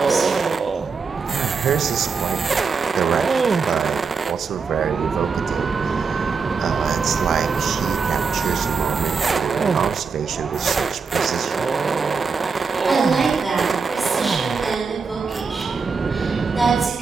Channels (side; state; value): left; quieter; 5.1 dB